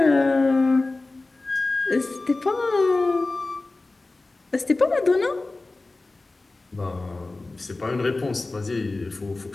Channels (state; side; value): quieter; right; 3.2 dB